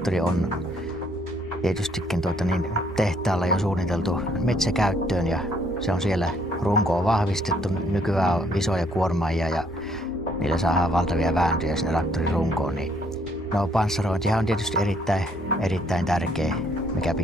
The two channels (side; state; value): both; normal; correlation 0.66